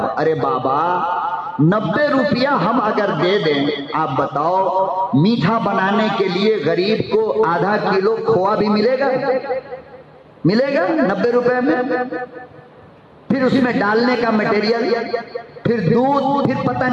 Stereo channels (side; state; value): both; identical; correlation 1.00